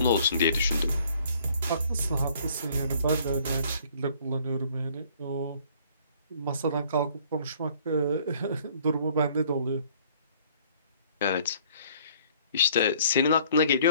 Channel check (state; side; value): inverted; both; correlation -0.59